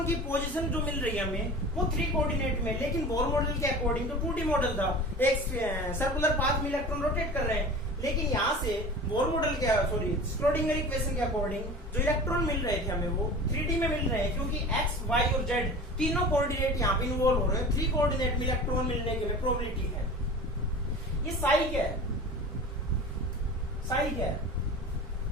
की पोजीशन जो मिल रही है हमें वो 3 कोऑर्डिनेट में, लेकिन बोर मॉडल के अकॉर्डिंग तो 2D मॉडल था, एक सर्कुलर पाथ में इलेक्ट्रॉन रोटेट कर रहे हैं। लेकिन यहाँ से बोर मॉडल के स्क्रोडिंगर इक्वेशन के अकॉर्डिंग जो इलेक्ट्रॉन मिल रहे थे हमें वो 3D में मिल रहे हैं, क्योंकि एक्स वाई और जेड तीनों कोऑर्डिनेट यहाँ पे इन्वॉल्व हो रहे हैं। 3 कोऑर्डिनेट में इलेक्ट्रॉन मिलने की प्रोबेबिलिटी है। ये साई क्या है, साई क्या है?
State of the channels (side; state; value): both; normal; correlation 0.37